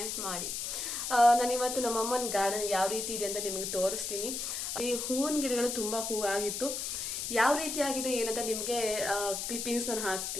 ಮಾಡಿ. ನಾನು ಇವತ್ತು ನಮ್ಮ ಅಮ್ಮನ ಗಾರ್ಡನ್ ಯಾವ ರೀತಿ ಇದೆ ಅಂತ ನಿಮಗೆ ತೋರಿಸ್ತೀನಿ. ಈ ಹೂವಿನ ಗಿಡಗಳು ತುಂಬಾ ಹೂ ಆಗಿತ್ತು. ಯಾವ ರೀತಿ ಆಗಿದೆ ಏನಂತ ನಿಮ್ಗೆ ಕ್ಲಿಪ್ಪಿಂಗ್ಸ್ ನಾನು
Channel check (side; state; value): left; noise; hiss, 3 dB below the sound